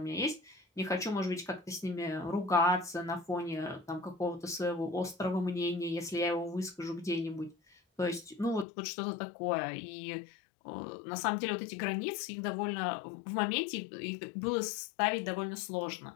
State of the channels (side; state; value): right; drops out; at 8.7 s